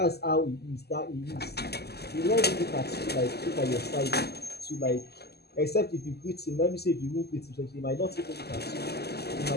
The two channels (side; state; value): right; late; 0.47 ms